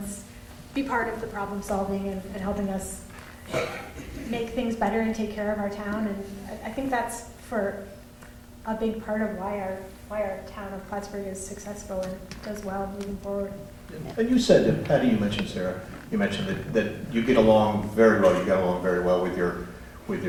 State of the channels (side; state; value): both; identical; correlation 1.00